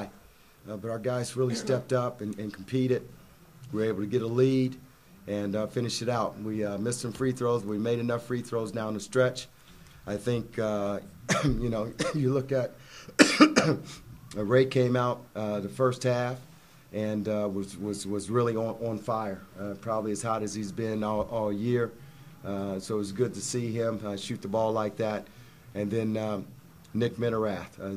But our guys really stepped up and competed. We were able to get a lead and finish it out. We missed some free throws. We made enough free throws down the stretch. I think, you know, you look at Ray came out the first half and was really on fire, probably as hot as he's been all year. So it was good to see him shoot the ball like that. And then Nick Minerath.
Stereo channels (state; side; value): identical; both; correlation 1.00